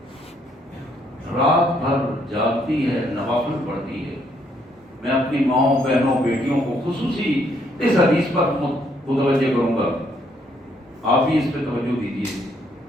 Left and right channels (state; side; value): normal; both; correlation 0.70